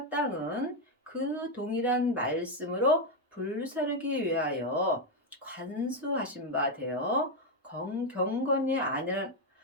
땅은 그 동일한 말씀으로 불사르기 위하여 관수하신 바 되어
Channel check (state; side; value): normal; both; correlation 0.04